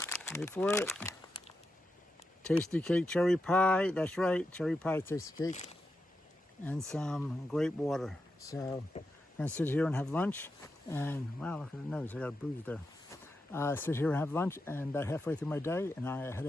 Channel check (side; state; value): both; normal; correlation 0.87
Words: Wait for it. Tasty cake cherry pie. That's right, cherry pie tasty cake. And some grape water. So I'm gonna sit here and have lunch. And wow, look at the nose, I got a bruise there. Sit here and have lunch, and about halfway through my day, and I head